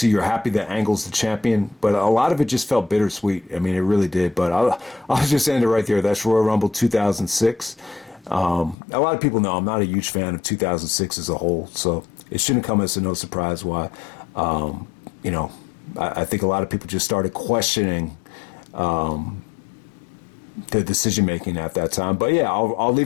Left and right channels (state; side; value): drops out; right; at 8.8 s